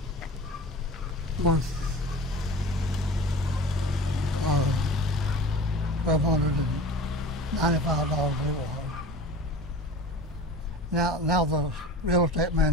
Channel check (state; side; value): normal; both; correlation 0.37